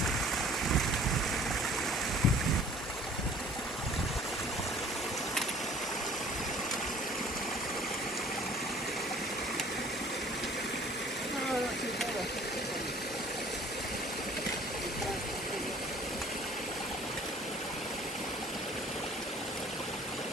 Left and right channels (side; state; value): both; normal; correlation 0.52